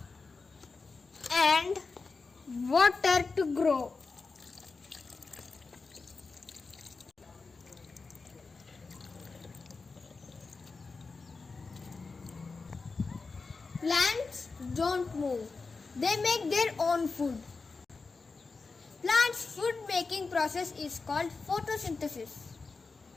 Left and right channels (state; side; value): quieter; right; 4.2 dB